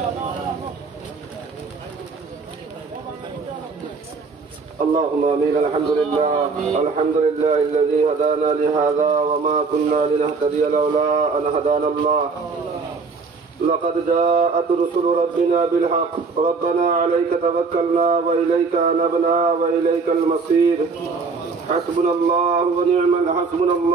اللهم امين. الحمد لله الذي هدانا لهذا وما كنا لنهتدي لولا ان هدانا الله. لقد جاءت رسل ربنا بالحق. ربنا عليك توكلنا واليك انبنا واليك المصير. حسبنا الله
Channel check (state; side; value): quieter; left; 4.6 dB